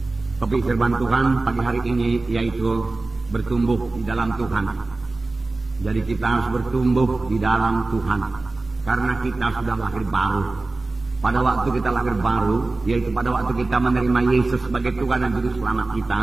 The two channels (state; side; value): quieter; left; 3.4 dB